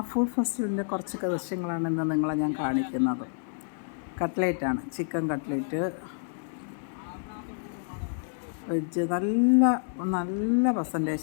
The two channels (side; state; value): right; silent; digital silence